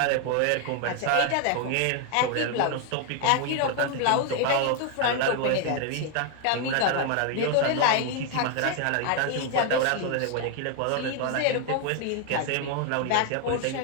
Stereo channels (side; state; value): both; different; correlation 0.01